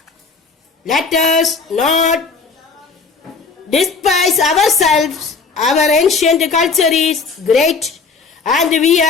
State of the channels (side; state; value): right; quieter; 4.7 dB